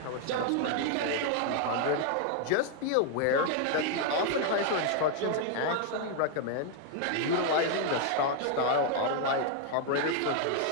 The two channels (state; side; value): different; both; correlation 0.00